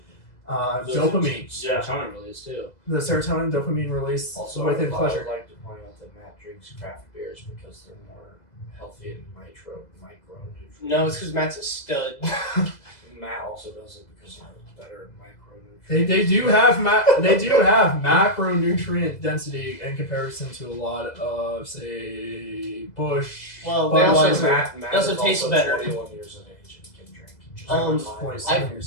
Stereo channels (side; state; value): right; late; 2.0 ms